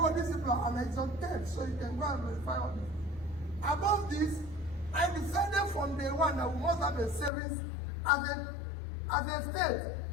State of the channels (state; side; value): drops out; right; at 7.3 s